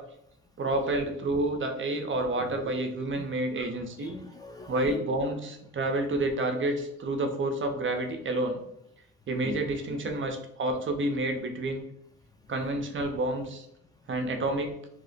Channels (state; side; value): normal; both; correlation 0.30